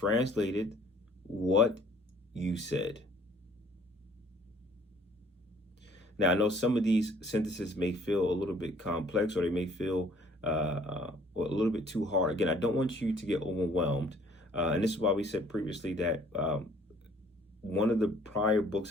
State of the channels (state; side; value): normal; both; correlation 0.57